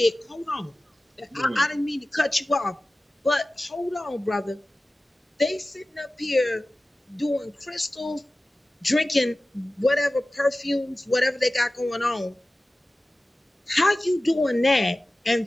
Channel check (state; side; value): normal; both; correlation 0.96